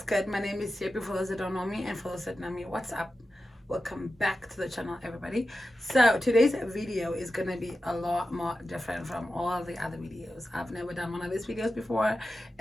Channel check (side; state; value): both; normal; correlation 0.92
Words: good? My name is Yepi for those that don't know me, and for those that know me, what's up? Welcome back to the channel, everybody. So today's video is gonna be a lot more different from all the other videos. I've never done one of these videos before,